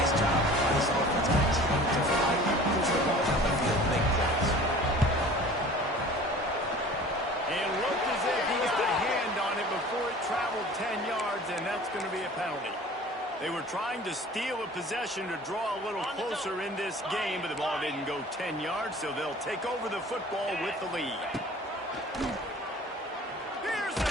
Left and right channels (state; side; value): normal; both; correlation 0.44